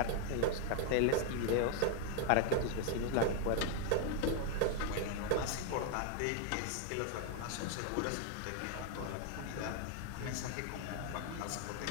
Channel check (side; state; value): both; different; correlation 0.00